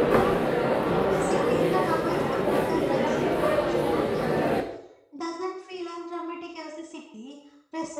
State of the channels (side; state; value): both; identical; correlation 1.00